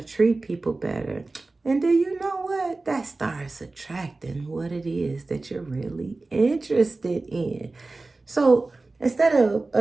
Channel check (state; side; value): quieter; left; 3.4 dB